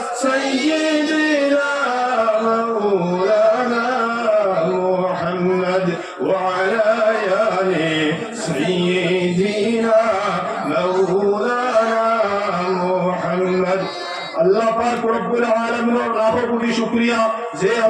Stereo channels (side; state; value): both; identical; correlation 1.00